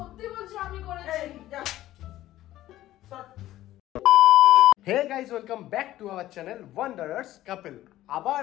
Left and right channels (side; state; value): right; quieter; 14.5 dB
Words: বলছি আমি করেছি। এই যা সর। Hey guys, welcome back to our channel Wanderers Couple. আবার